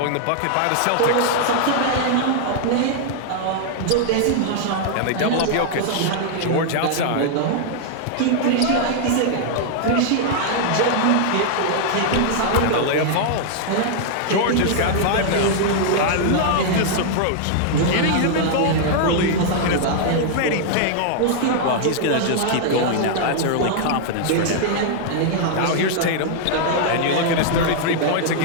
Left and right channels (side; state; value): both; different; correlation -0.01